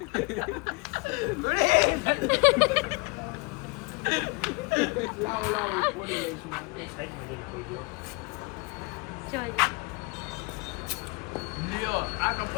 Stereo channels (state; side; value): quieter; right; 27.3 dB